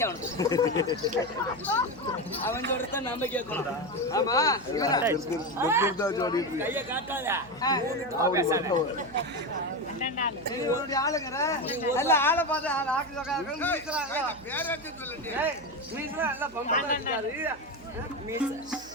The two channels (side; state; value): right; noise; hum, 22 dB below the sound